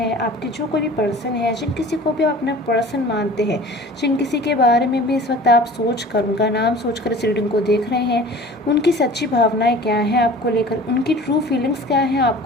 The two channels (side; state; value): both; normal; correlation 0.43